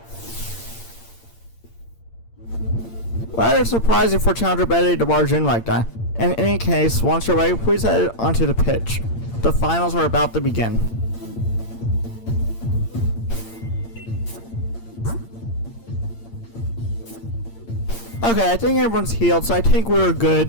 Rather surprising for Challenger Bede to barge in like that. In any case, once you're ready, please head onto the pitch. The finals are about to begin. Okay, I think everyone's healed, so I think we're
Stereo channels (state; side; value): late; right; 8.8 ms